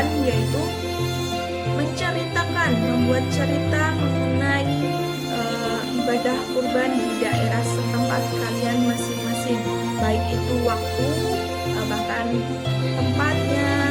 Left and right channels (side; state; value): both; identical; correlation 1.00